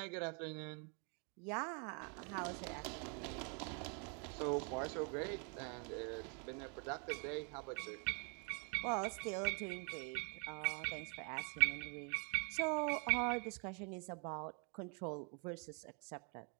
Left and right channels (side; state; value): left; quieter; 37.5 dB